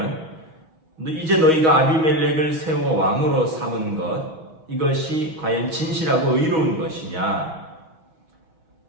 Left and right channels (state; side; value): late; left; 6.2 ms